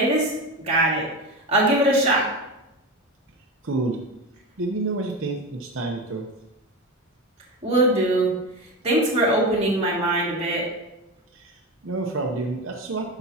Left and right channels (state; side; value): normal; both; correlation 0.21